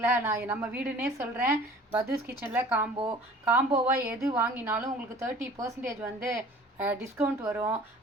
நான் நம்ம வீடுன்னே சொல்கிறேன். பத்தூஸ் கிச்சனில் காம்போவாக எது வாங்கினாலும் உங்களுக்கு 30% வந்து டிஸ்கவுண்ட் வரும்.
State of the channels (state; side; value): normal; both; correlation 0.47